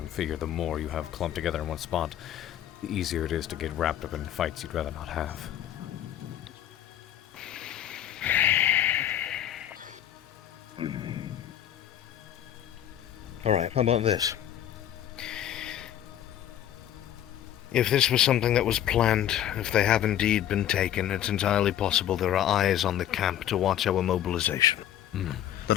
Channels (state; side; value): quieter; right; 11.2 dB